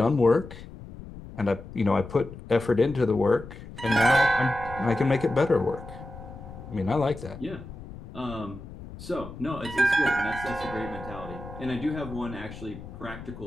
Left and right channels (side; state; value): left; noise; rumble, 14 dB below the sound